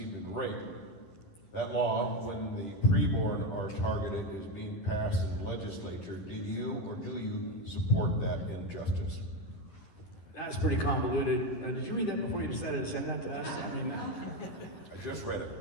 in rape? That law, when the preborn are targeted, is being passed in the legislature. Did you or do you support that injustice? That's pretty convoluted. Did you read that before you decided to send that to us? I mean, I just read it.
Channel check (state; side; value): late; right; 11 ms